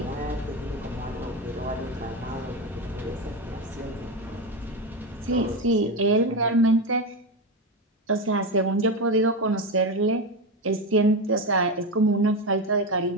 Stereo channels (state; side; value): normal; both; correlation 0.16